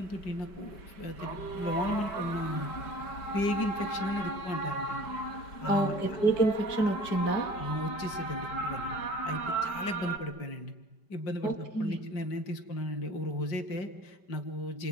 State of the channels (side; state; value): right; late; 5.1 ms